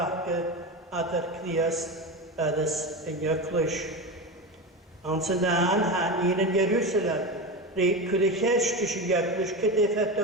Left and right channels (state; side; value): normal; both; correlation 0.22